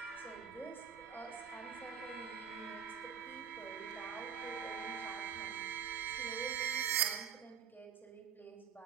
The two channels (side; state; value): left; quieter; 7.9 dB